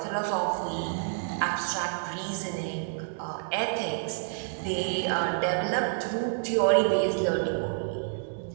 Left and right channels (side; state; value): left; silent; 59 dB below the other